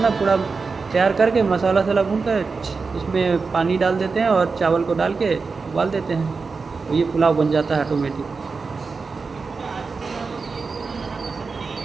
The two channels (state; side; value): quieter; left; 4.6 dB